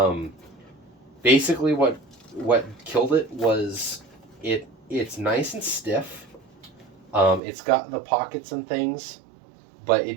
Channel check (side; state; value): left; drops out; at 7.4 s